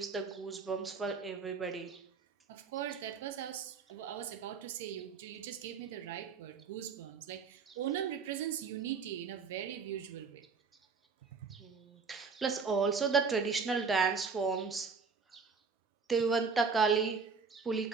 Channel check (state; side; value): quieter; left; 5.3 dB